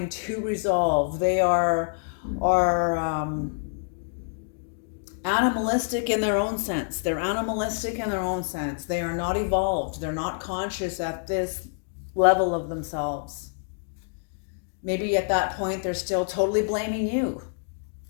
to resolve. They are animalistic in their own sense. They are not evolved. They're not conscious at this level of themselves. Maybe at that point, they're still totally blaming you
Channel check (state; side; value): silent; right; digital silence